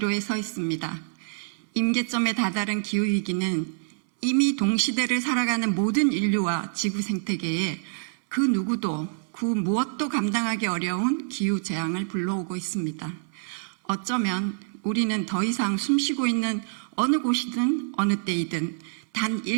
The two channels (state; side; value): silent; left; 61 dB below the other